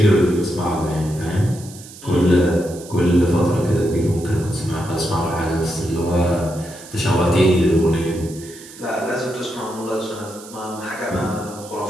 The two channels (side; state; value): right; noise; hiss, 18 dB below the sound